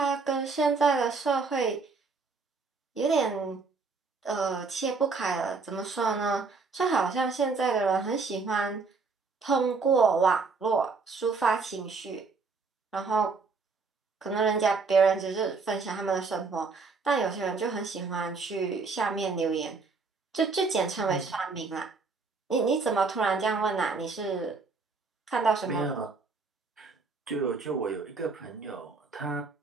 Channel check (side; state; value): left; quieter; 4.4 dB